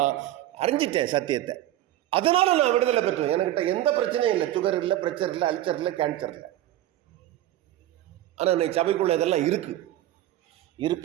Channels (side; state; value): left; quieter; 13.9 dB